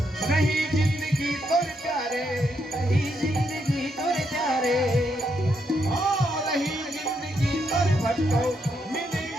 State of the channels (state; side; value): normal; both; correlation 0.78